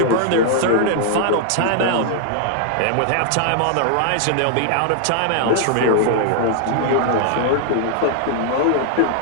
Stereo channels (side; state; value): both; different; correlation -0.01